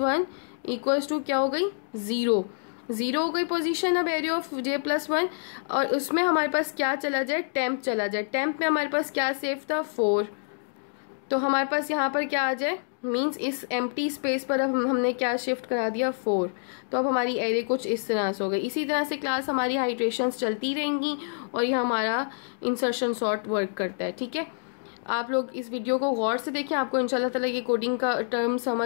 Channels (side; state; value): right; silent; digital silence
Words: इक्वल्स टू क्या हो गई 0 हो गई पोजीशन। अब एरिया ऑफ j प्लस 1, और उसमें हमारे पास क्या चला जाए, टेम्प चला जाए। टेम्प में हमारे पास क्या सेफ था 4, तो हमारे पास यहाँ पर क्या आ जाए, मींस इस एम्प्टी स्पेस पर अब हमने क्या शिफ्ट करा दिया 4, तो अब हमारी एरे कुछ इस तरह से हो गई। इसी तरह से क्लास हमारी हाइड्रेशंस चलती रहेंगी और ये हमारा इंसर्शन सॉर्ट वर्क करता है। ठीक है, आप लोग इस वीडियो को गौर से देखें, आपको इंशाल्लाह ताला ये कोडिंग का टर्म